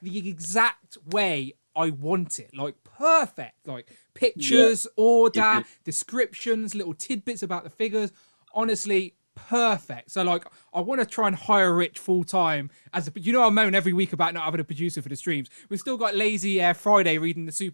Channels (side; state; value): both; inverted; correlation -1.00